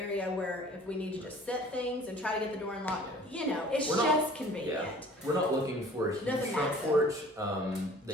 where if we need to just set things and try to get the door unlocked, it's just convenient. Yeah. We're not looking for a huge Doesn't front matter. porch that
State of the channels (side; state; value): both; normal; correlation 0.49